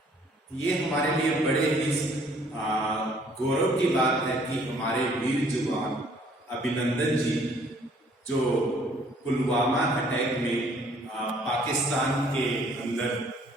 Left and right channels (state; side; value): normal; both; correlation 0.60